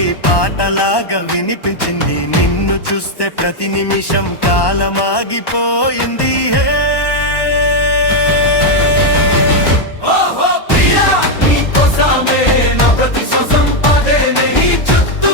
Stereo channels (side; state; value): right; late; 1.1 ms